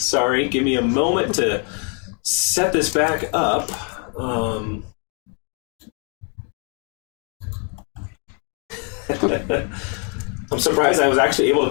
give me a moment to set this back up. I'm surprised I was actually able to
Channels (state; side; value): quieter; right; 39.4 dB